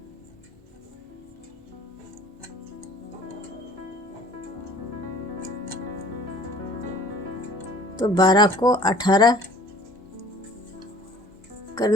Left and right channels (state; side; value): normal; both; correlation 0.49